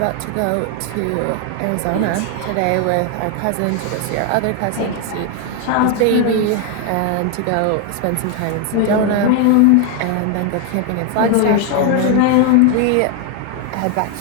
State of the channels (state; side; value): different; both; correlation 0.01